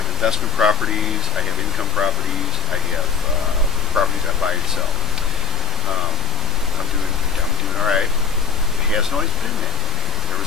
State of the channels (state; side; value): normal; both; correlation 0.19